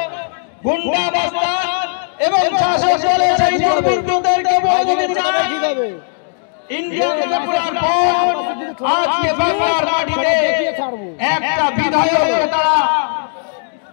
গুন্ডা বাস্তান এবং শাসক দলের সেই দুর্বৃত্তদেরকে বলতে চাই, ইন্ডিয়াকে টুকরার পর আজকে বাংলার মাটিতে একটা বিধায়ককে তারা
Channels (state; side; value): silent; right; digital silence